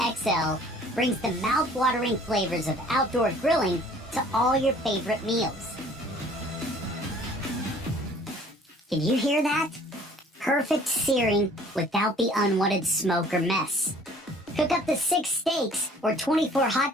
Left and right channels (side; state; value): both; normal; correlation 0.53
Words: brings the mouth-watering flavors of outdoor grilling to all your favorite meals. Can you hear that? Perfect searing without the unwanted smoke or mess. Cook up to 6 steaks or 24 hot